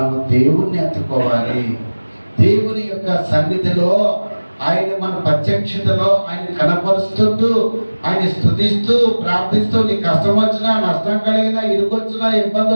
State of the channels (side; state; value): both; inverted; correlation -1.00